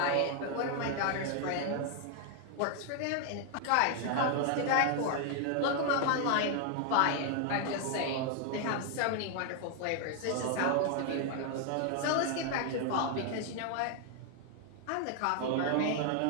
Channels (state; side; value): different; both; correlation 0.00